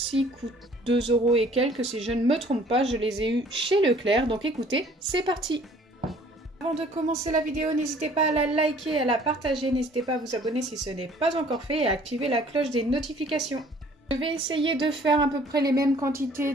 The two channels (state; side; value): normal; both; correlation 0.55